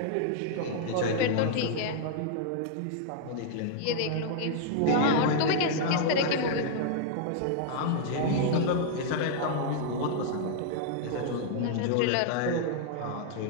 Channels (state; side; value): different; both; correlation -0.01